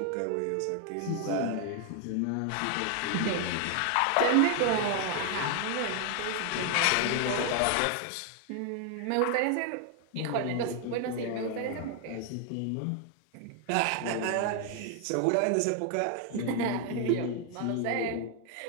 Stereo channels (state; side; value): different; both; correlation 0.00